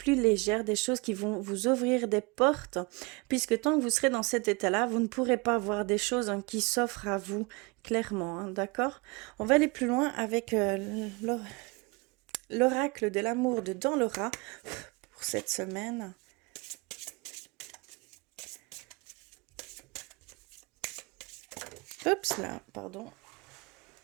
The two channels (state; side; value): quieter; left; 27.7 dB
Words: légères, des choses qui vont vous ouvrir des portes, puisque tant que vous serez dans cet état-là, vous ne pourrez pas voir des choses qui s'offrent à vous, clairement. Hein, d'accord? On va aller plus loin avec l'oracle de l'amour de Dans Laura pour cette semaine. Oups là, pardon.